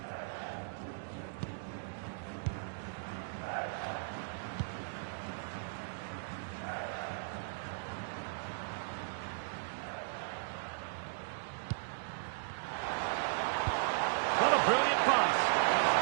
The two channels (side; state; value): left; silent; digital silence